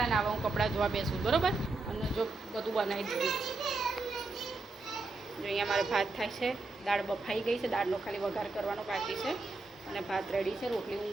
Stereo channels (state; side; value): quieter; left; 3.3 dB